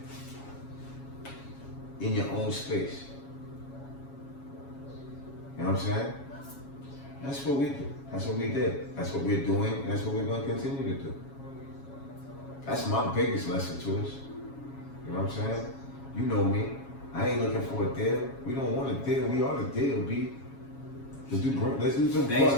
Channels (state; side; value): late; right; 7.2 ms